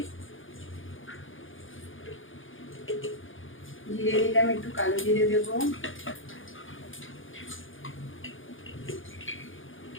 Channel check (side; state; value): right; late; 0.58 ms